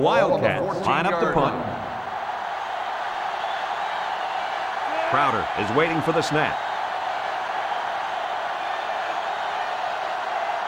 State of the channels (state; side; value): identical; both; correlation 1.00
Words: line up the punt. Crowder is waiting for the snap.